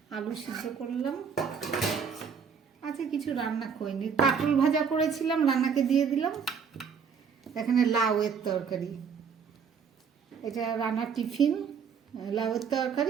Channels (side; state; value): left; quieter; 6.5 dB